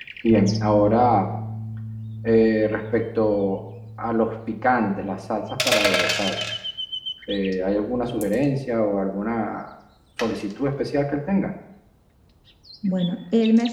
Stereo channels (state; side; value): identical; both; correlation 1.00